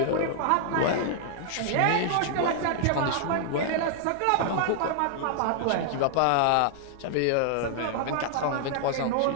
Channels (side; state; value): both; different; correlation 0.00